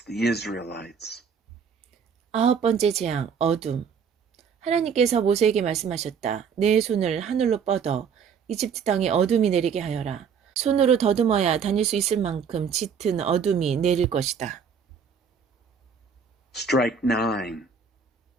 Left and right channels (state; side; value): quieter; left; 6.5 dB